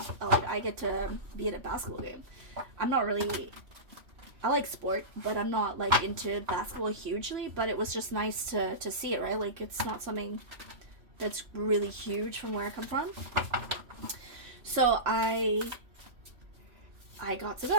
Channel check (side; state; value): left; late; 3.0 ms